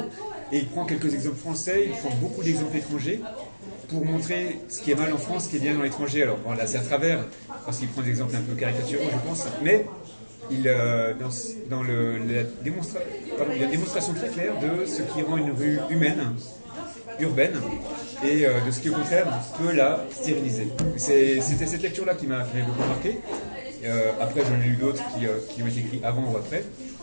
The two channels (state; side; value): inverted; both; correlation -1.00